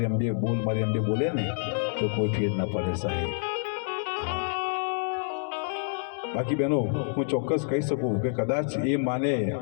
અંબે બોલે ને તો કોઈ ફેર ના પડે સાહેબ. બાકી બહેનો હું ચોક્કસ કહી શકું કે કદાચ એ માને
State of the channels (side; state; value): right; silent; digital silence